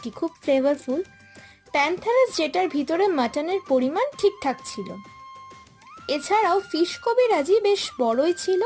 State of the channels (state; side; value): identical; both; correlation 1.00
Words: খুব ফ্লেভারফুল। প্যান্থারাস যেটার ভিতরে মাটনের পরিমাণ ঠিকঠাক ছিল। এছাড়াও ফিশ কবিরাজি বেশ বড়ই ছিল